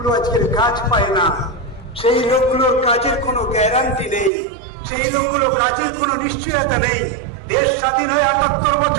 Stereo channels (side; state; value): left; drops out; at 4.3 s